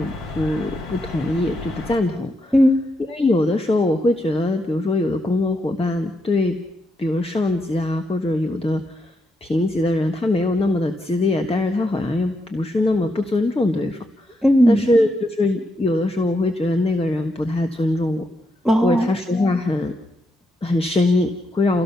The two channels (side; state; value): both; normal; correlation 0.81